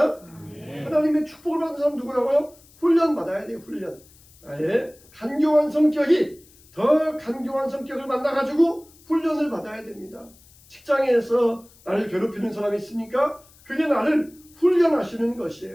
하나님의 축복을 받는 사람 누구라고요? 훈련 받아야 돼요. 훈련. 나의 간교한 성격이 더 간교한 성격을 만나가지고 훈련을 받아야 됩니다. 직장에서 나를 괴롭히는 사람이 있습니까? 그게 나를 훈련하시는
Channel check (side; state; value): left; noise; hiss, 27 dB below the sound